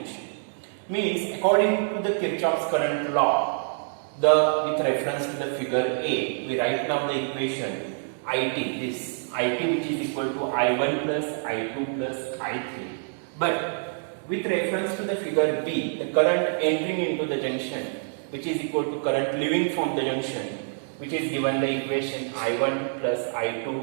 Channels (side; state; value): left; silent; digital silence